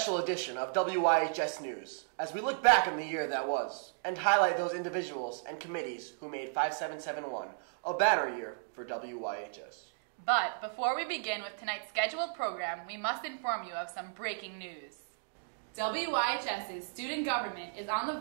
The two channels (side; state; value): left; silent; digital silence